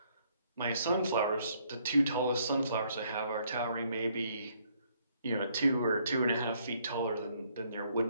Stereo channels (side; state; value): both; inverted; correlation -0.68